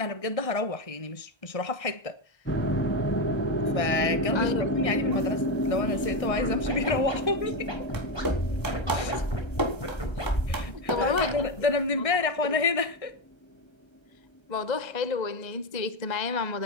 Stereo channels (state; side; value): late; right; 1.3 ms